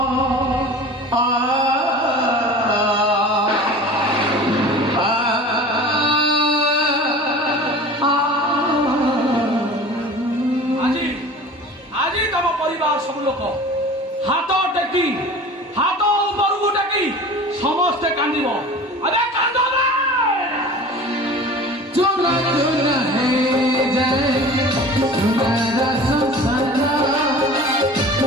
ସବୁ ଲୋକ ହାତ ଟେକି ହାତ ଉପରକୁ ଟେକି ସମସ୍ତେ କାନ୍ଦିବ ଆରେ କାନ୍ଦ ଚୁନା ଚୁନା ହେଇଯାଏ ଚୁନାର ସଂସାର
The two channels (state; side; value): normal; both; correlation 0.40